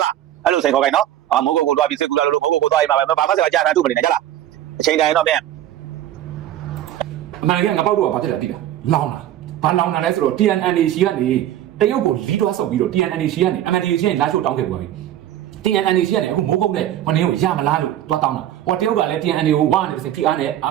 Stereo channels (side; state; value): left; quieter; 12.3 dB